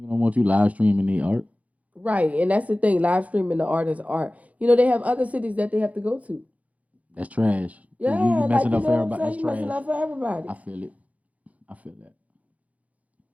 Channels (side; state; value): left; late; 0.069 ms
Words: don't want you live streaming the art. Right, and that's the thing. Live streaming the artist's art. They have other cities that they have to go to. That's trash. Yeah, you messing up for everybody. That's trash. Messing up for everybody. I feel it. I feel that.